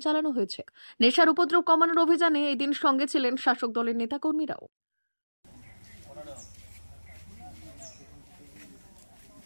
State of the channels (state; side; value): inverted; both; correlation -1.00